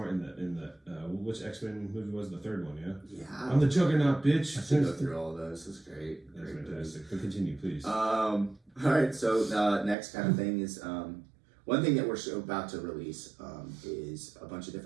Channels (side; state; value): left; drops out; at 10.0 s